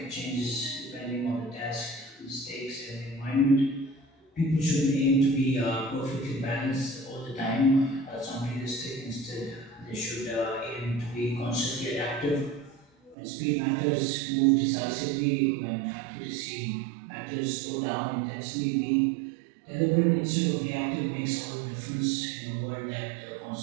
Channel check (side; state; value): left; drops out; at 13.2 s